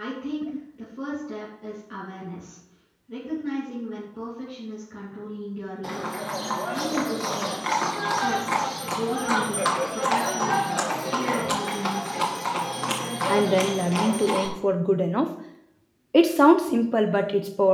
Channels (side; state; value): both; identical; correlation 1.00